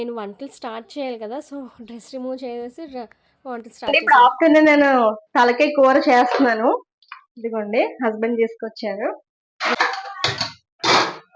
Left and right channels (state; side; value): identical; both; correlation 1.00